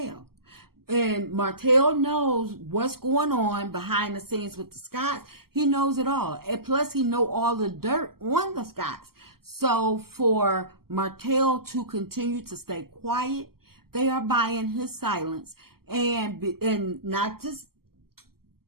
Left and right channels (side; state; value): left; late; 0.94 ms